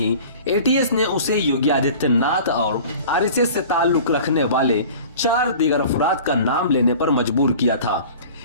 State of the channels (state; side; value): inverted; both; correlation -0.42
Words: एटीएस ने उसे योगी आदित्यनाथ और आरएसएस से ताल्लुक रखने वाले 4 दीगर अफराद का नाम लेने पर मजबूर किया था।